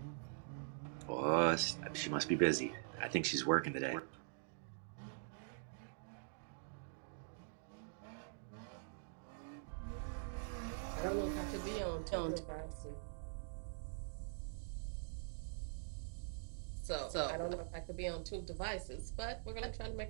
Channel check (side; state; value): left; silent; digital silence